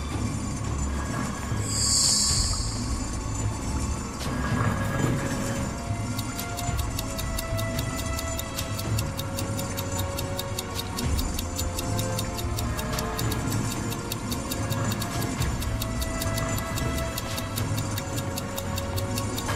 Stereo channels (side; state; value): both; identical; correlation 1.00